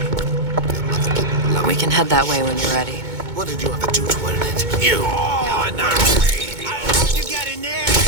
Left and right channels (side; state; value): left; late; 2.2 ms